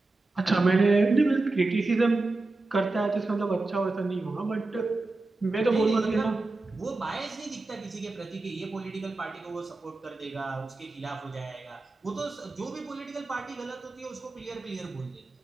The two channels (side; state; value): left; quieter; 3.3 dB